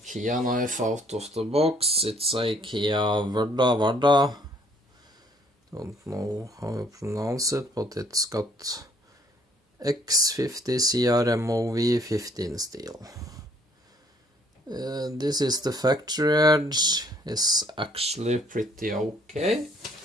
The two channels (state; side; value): normal; both; correlation 0.62